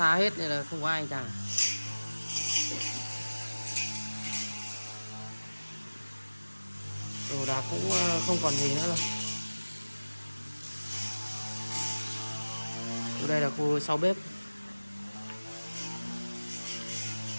hết nên là không có ai cả. Đồ đạc cũng không còn gì nữa rồi. Đây là khu sau bếp.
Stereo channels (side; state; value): both; inverted; correlation -1.00